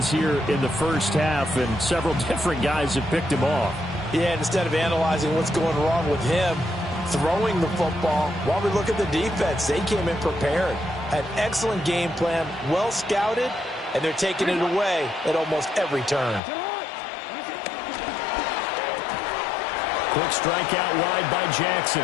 here in the first half, and several different guys have picked him off. Yeah, instead of analyzing what's going wrong with him, throwing the football, while we look at the defense, they came in prepared. An excellent game plan, well scouted, and they're taking it away at almost every turn. Quick strike out wide by Jackson.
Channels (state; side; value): drops out; right; at 16.4 s